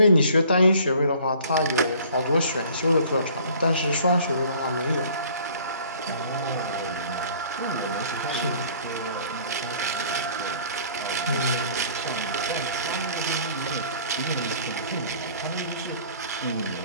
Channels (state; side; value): inverted; both; correlation -0.52